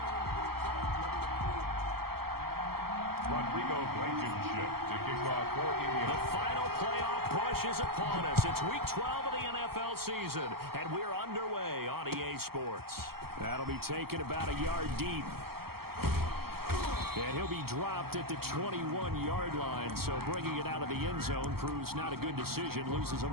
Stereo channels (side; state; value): left; late; 0.95 ms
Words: Rodrigo Blankenship to kick off for Indiana. The final playoff push is upon us. It's week 12 of the NFL season, and we're underway on EA Sports. That'll be taken about a yard deep. And he'll be dropped at the 21-yard line, so bringing it out of the end zone proves not a good decision, loses